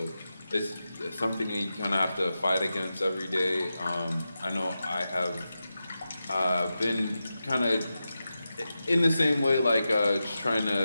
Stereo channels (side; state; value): both; inverted; correlation -0.91